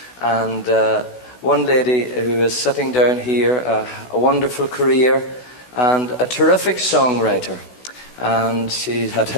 And one lady who is sitting down here, a wonderful career and a terrific songwriter. And she had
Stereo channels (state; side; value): late; right; 16 ms